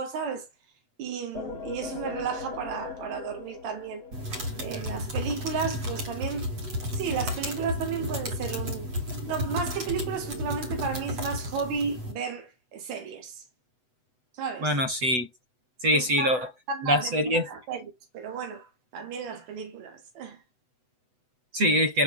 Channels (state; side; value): late; left; 8.0 ms